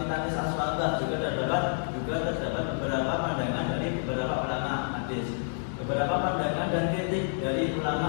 hadis Al-Shabah juga dari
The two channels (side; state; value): right; silent; digital silence